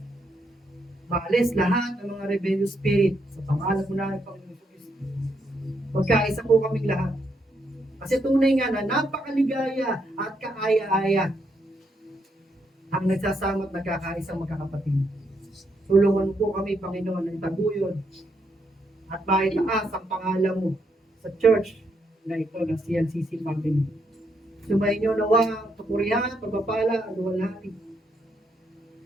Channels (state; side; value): normal; both; correlation 0.77